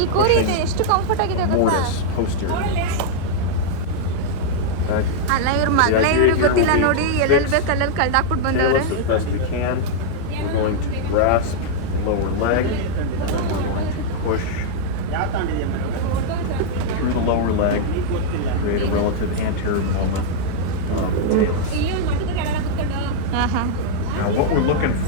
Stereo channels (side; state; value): both; different; correlation -0.01